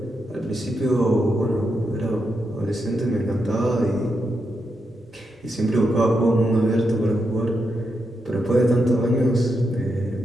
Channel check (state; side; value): normal; both; correlation 0.84